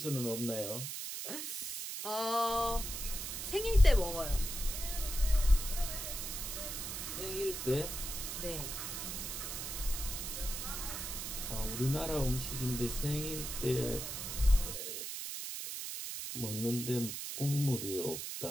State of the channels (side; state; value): right; noise; hiss, 5 dB below the sound